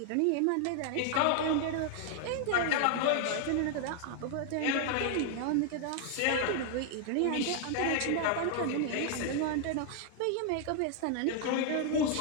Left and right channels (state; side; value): different; both; correlation 0.00